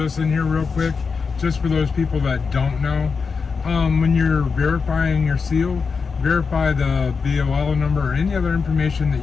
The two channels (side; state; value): right; quieter; 5.2 dB